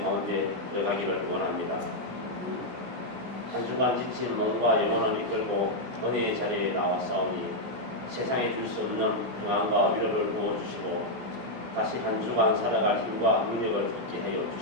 가운데 들어가기를 원합니다. 한 주간 지친 몸과 영혼을 이끌고 은혜의 자리에 나왔사오니 세상에 줄 수 없는 평안과 위로를 부어주시고 다시 한 주간 살아갈 힘과 능력을 얻게 하여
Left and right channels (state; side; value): late; left; 16 ms